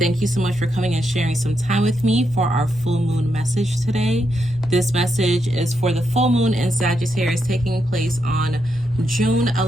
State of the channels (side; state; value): right; noise; rumble, 20 dB below the sound